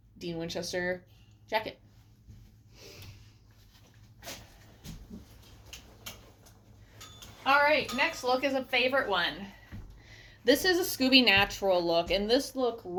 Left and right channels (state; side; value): identical; both; correlation 1.00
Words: Dean Winchester jacket. All right, next look is a favorite one. This is a Scooby Natural look, and this look